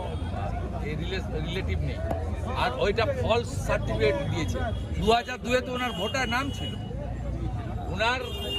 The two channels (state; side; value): identical; both; correlation 1.00